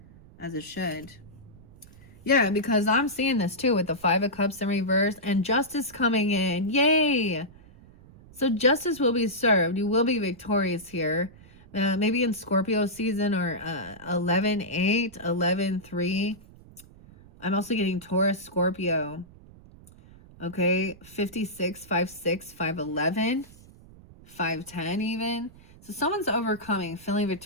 as it should. Yeah, because I'm seeing this too with the Five of Cups in reverse and justice coming in. Yay! So justice will be served. You will be victorious here. Maybe in Scorpio season or 11-8, 11-3. I'm also getting Taurus, Scorpio. Okay, 56, 5-6, 5-11, 5-10 even. So someone's overcoming, feeling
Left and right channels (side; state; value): right; noise; rumble, 22 dB below the sound